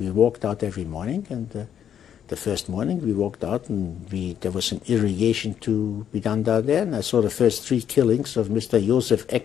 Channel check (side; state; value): right; quieter; 9.2 dB